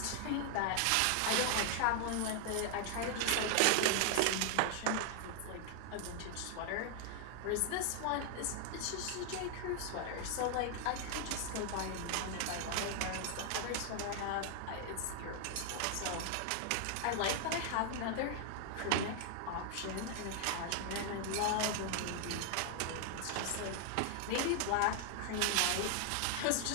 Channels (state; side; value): different; both; correlation 0.00